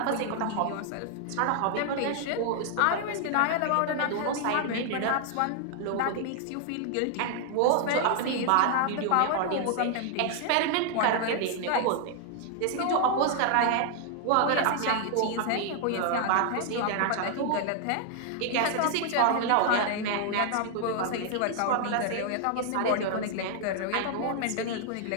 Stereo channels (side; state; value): both; different; correlation 0.00